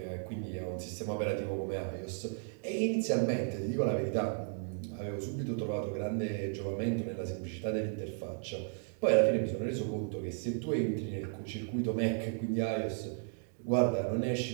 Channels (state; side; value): silent; left; 55 dB below the other